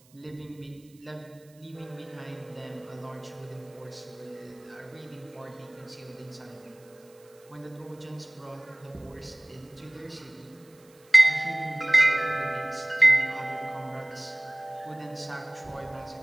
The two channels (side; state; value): right; noise; hiss, 29 dB below the sound